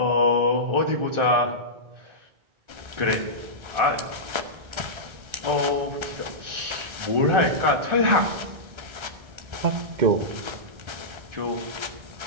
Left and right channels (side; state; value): left; late; 1.3 ms